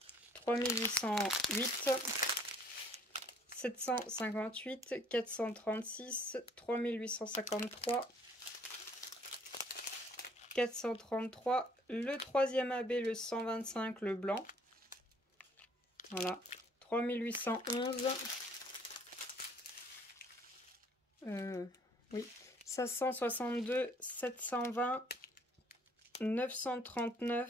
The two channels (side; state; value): both; normal; correlation 0.59